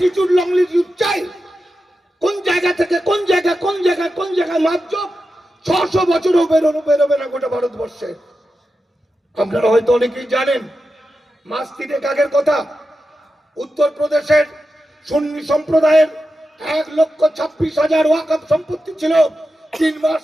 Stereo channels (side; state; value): both; normal; correlation 0.90